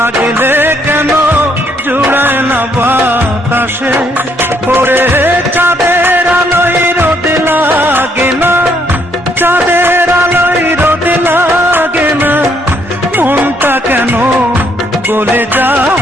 কেন জুড়ায় না বাতাসে। ওরে চাঁদের আলোয় রোদ লাগে না, চাঁদের আলোয় রোদ লাগে না, মনটা কেন গলে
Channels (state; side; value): normal; both; correlation 0.70